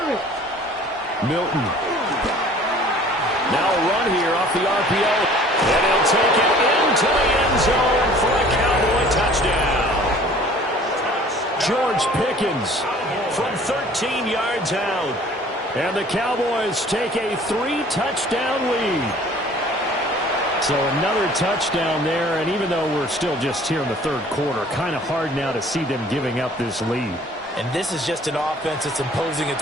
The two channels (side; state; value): both; normal; correlation 0.51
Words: Milton. Now a run here off the RPO. And he'll take it into the end zone for a Cowboy touchdown. George Pickens from 13 yards out. And the Cowboys take a 3-touchdown lead. So another touchdown there, and even though we're still just here in the third quarter, kind of hard now to see them giving up this lead. And this is just an offense that's imposing its